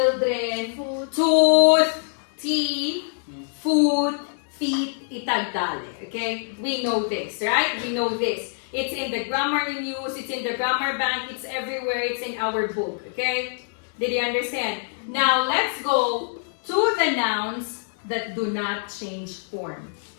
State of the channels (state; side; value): silent; right; 62 dB below the other